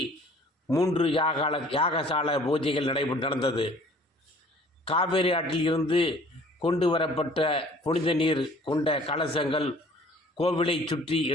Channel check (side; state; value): both; normal; correlation 0.52